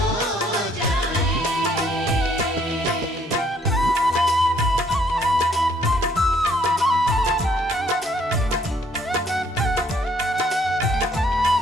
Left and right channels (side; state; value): both; normal; correlation 0.65